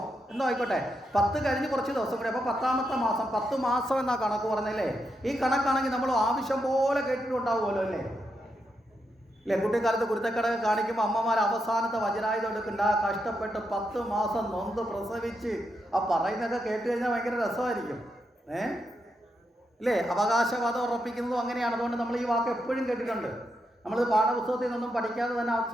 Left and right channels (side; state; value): both; normal; correlation 0.83